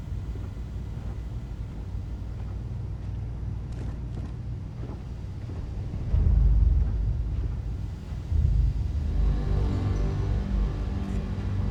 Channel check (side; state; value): both; identical; correlation 1.00